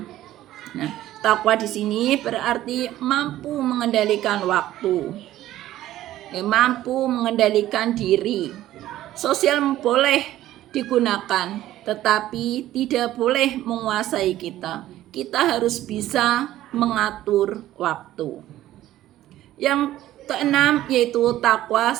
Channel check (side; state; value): left; quieter; 14.0 dB